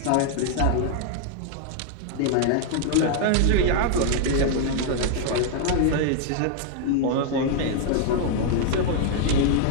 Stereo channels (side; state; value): both; different; correlation 0.00